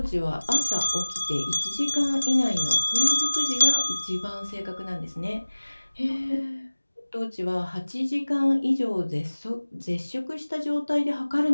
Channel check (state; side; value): inverted; both; correlation -1.00